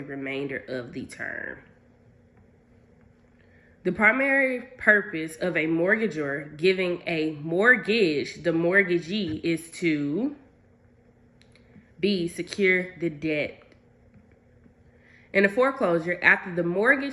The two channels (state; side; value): identical; both; correlation 1.00